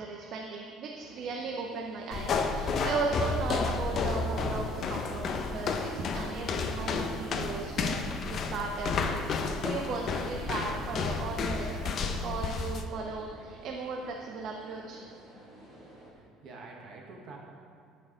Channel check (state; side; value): normal; both; correlation 0.57